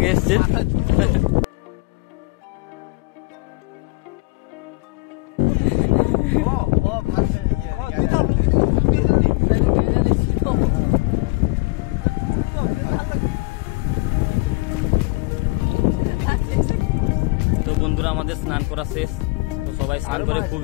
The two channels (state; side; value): quieter; right; 24.7 dB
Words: এসছে। তো বন্ধুরা আমাদের স্নান করা শেষ, তো সবাই স্নান করে